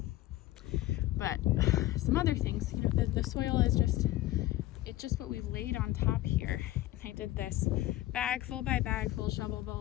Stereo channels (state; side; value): quieter; right; 15.8 dB